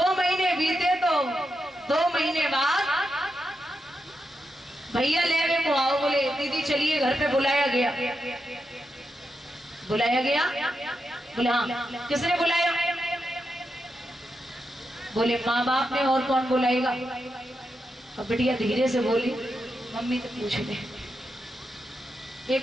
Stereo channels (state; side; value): normal; both; correlation 0.86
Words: महीने बीते तो 2 महीने बाद भैया लेवे को आओ। बोले दीदी चलिए घर पे बुलाया गया। बुलाया गया? बोले हाँ। किसने बुलाया? बोले माँ बाप ने, और कौन बुलाएगा? अब बिटिया धीरे से बोली मम्मी तो पूछ ले।